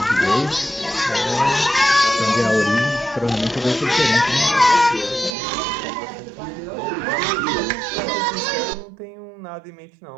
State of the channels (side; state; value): left; drops out; at 5.4 s